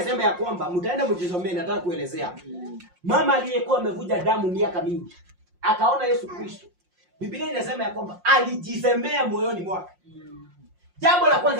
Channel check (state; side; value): late; left; 5.6 ms